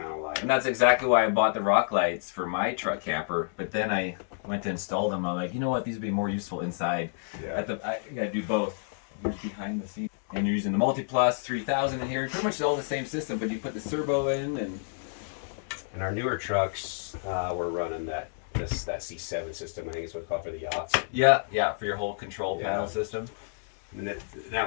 of light. And that's exactly why I bought the rock lights for my truck camper. But then I went to install them. I'm like, you know what? These would be more useful inside. Yeah. I gotta do both. Here's behind the scenes. And you're using the Multiplus 3000 in here. Pretty much all the same system, but you put the servo in. And our newer trucks, we're running that C7 system. I think is what it's called for the yachts. Yeah, for your whole control panel system. And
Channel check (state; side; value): silent; right; digital silence